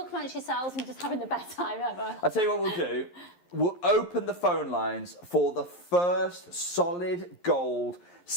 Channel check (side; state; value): right; late; 11 ms